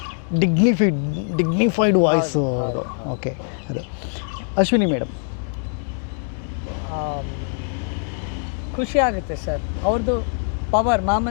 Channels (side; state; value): right; silent; 56 dB below the other